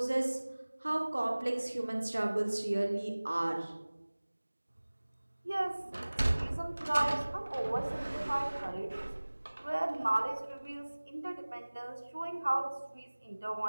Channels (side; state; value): both; inverted; correlation -1.00